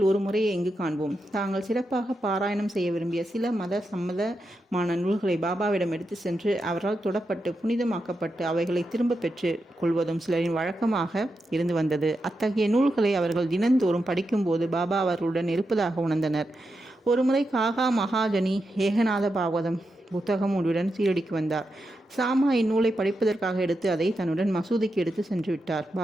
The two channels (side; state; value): both; normal; correlation 0.87